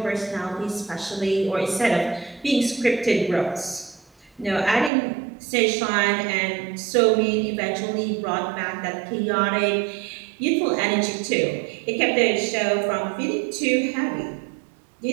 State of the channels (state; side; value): drops out; left; at 4.9 s